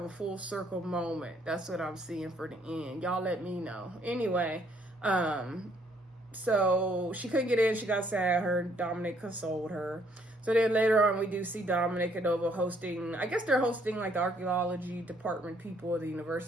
a full circle moment. That's what I'm seeing for the end. Y'all let me know. Anyway, so she couldn't get in. She got sad. Her Dominic consoled her. So then later on, we do see Dominic and Nova hosting, I guess they're hosting like the archaeology department people of the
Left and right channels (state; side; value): normal; both; correlation 0.67